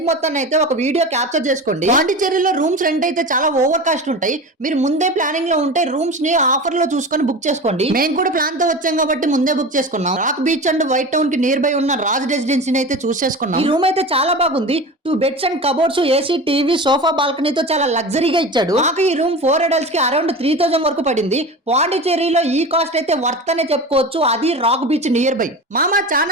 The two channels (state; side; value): normal; both; correlation 0.30